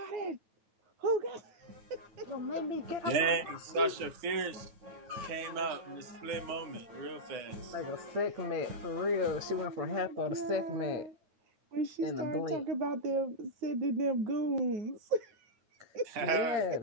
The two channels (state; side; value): late; left; 9.7 ms